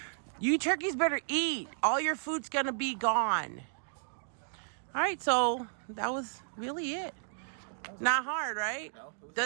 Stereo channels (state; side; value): silent; left; digital silence